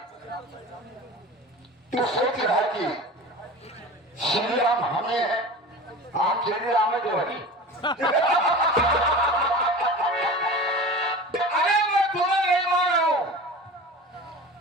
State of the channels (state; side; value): normal; both; correlation 0.34